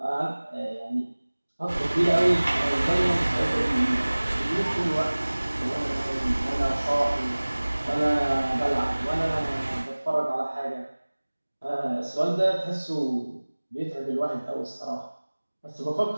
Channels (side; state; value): both; inverted; correlation -1.00